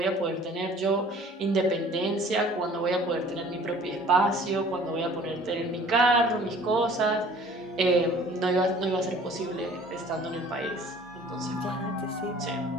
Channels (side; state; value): both; normal; correlation 0.51